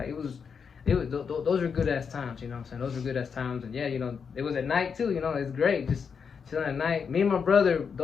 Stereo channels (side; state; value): right; quieter; 6.3 dB